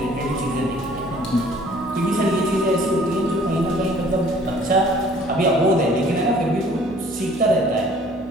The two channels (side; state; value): both; normal; correlation 0.55